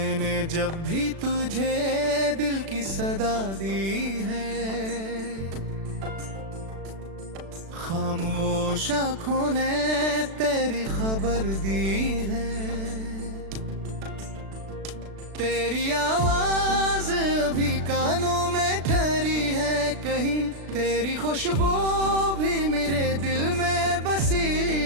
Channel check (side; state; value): left; late; 36 ms